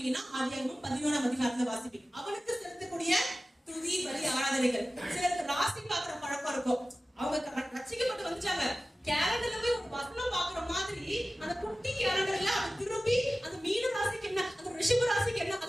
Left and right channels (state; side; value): normal; both; correlation 0.96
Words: ஆதியாகமம் 11ஆம் அதிகாரத்துல வாசிப்பீங்க. அவனுக்கு செலுத்தக்கூடிய துதி பலி ஆராதனைகள். சிலருக்கு ராசி பாக்குற பழக்கம் இருக்கும். அவங்க ரட்சிக்கப்பட்டு வந்துட்டாங்க, கேலண்டர்ல போய் ஒரு வசனம் பாக்குற மாதிரி அந்த குட்டி கேலண்டர்ல அது திரும்பி அந்த மீன ராசிக்கு என்ன, அந்த ரிஷப ராசிக்கு என்ன